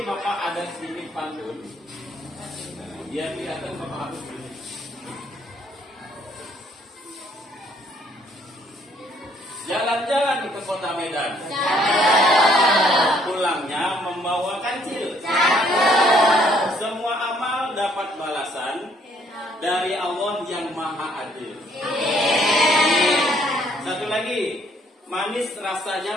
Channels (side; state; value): both; normal; correlation 0.65